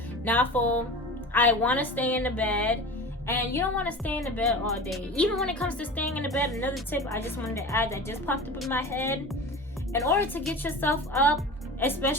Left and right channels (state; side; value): normal; both; correlation 0.33